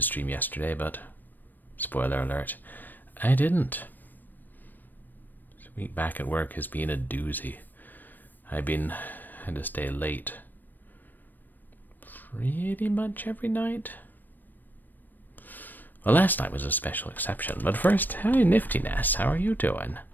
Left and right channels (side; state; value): right; late; 0.090 ms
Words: stream yesterday, but, spoiler alert, I didn't. This week back at work has been a doozy. Had to stay late pretty much every night. Well, last night was a special exception, but first, hi Niftiness, how are you doing?